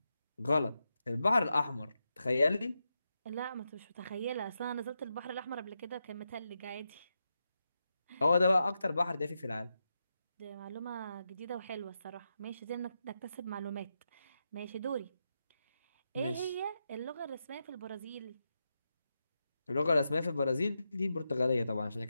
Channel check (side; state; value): both; inverted; correlation -0.87